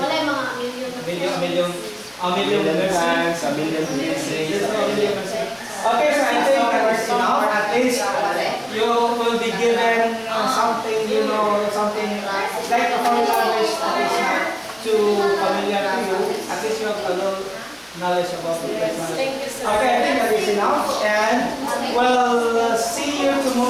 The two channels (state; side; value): identical; both; correlation 1.00